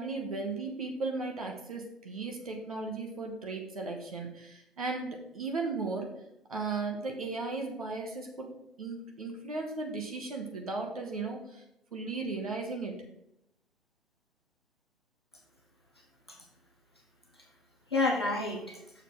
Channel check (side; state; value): both; normal; correlation 0.39